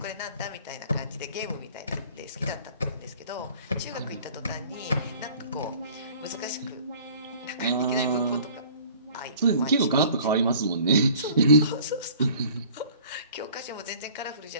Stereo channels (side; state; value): both; inverted; correlation -0.50